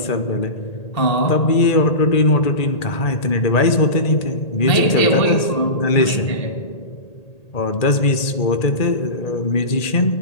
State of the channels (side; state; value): right; late; 1.8 ms